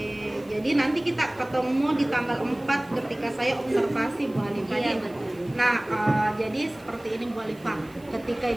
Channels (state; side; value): noise; right; hiss, 27 dB below the sound